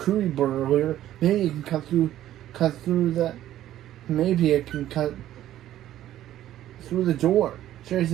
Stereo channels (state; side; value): quieter; left; 12.9 dB